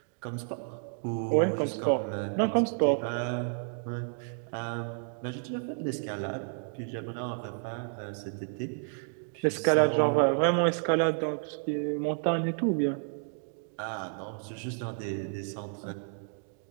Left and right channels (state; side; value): silent; left; 57 dB below the other